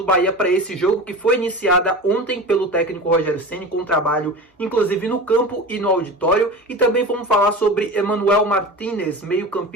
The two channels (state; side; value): normal; both; correlation 0.31